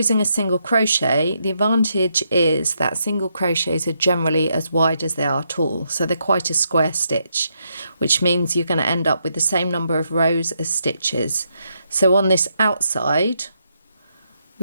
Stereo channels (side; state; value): both; inverted; correlation -0.79